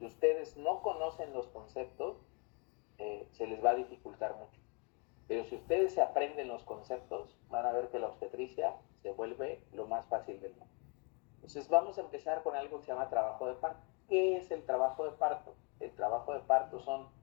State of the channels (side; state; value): right; quieter; 34.0 dB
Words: ustedes no conocen los conceptos, se les va a dificultar mucho. Pero si ustedes se aprenden los conceptos, van a ver que la obstetricia se vuelve lo más fácil del mundo. Entonces vamos a empezar con algo que se llama trabajo de parto. ¿Qué es el trabajo de parto? El trabajo de parto son